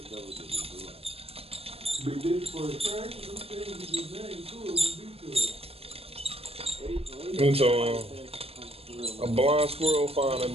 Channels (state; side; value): late; left; 0.28 ms